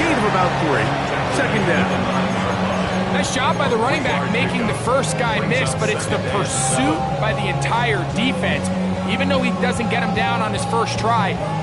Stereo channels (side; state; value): both; identical; correlation 1.00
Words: of about 3. Second down. Nice job by the running back making the first guy miss, but it's the pursuit by the entire defense. Even though he doesn't get him down on his first try,